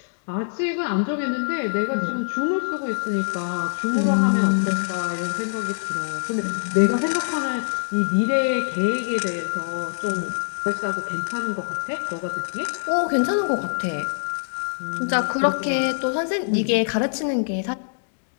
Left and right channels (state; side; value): silent; right; digital silence